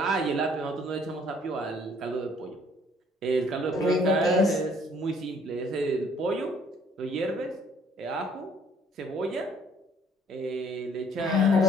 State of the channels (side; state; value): both; normal; correlation 0.60